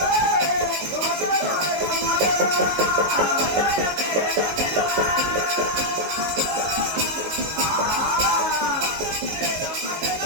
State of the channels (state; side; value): late; left; 19 ms